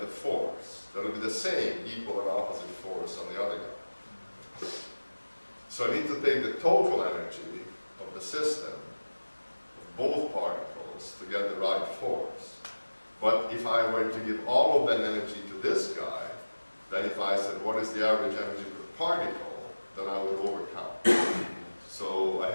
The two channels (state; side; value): inverted; both; correlation -1.00